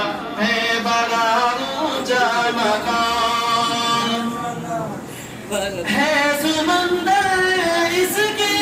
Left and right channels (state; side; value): identical; both; correlation 1.00